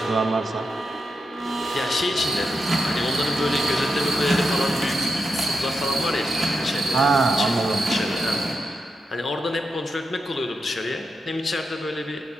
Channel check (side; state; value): both; normal; correlation 0.86